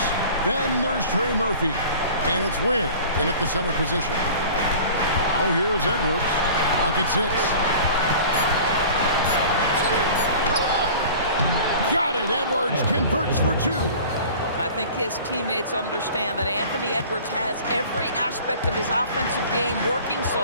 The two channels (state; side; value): inverted; both; correlation -0.43